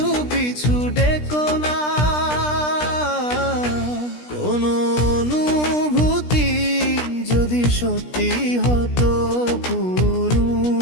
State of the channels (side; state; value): right; late; 17 ms